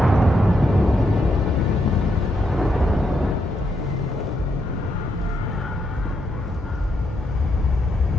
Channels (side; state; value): both; normal; correlation 0.79